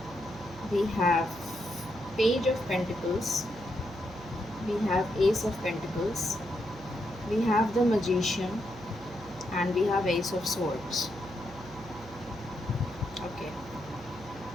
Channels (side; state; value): right; noise; hum, 17 dB below the sound